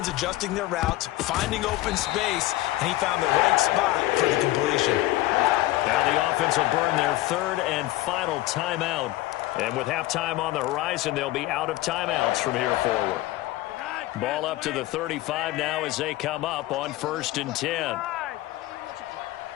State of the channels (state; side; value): quieter; right; 17.0 dB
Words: adjusting their routes, finding open space, and he found the right spot for the completion. Now the offense will burn their third and final timeout. And with halftime on the horizon, they'll be out of timeouts from here forward. Ball up to the 35 now as they come up on 1st and 10.